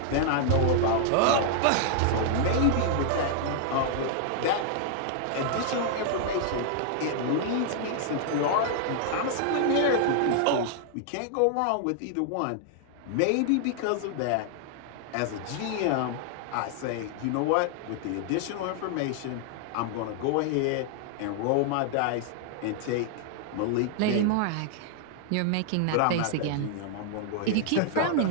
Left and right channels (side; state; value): both; different; correlation 0.00